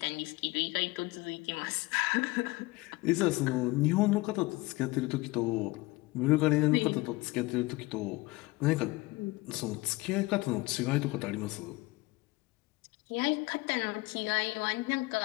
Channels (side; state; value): right; quieter; 21.5 dB